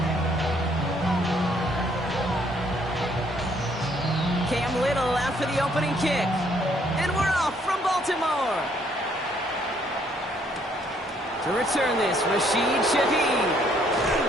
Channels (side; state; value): both; normal; correlation 0.67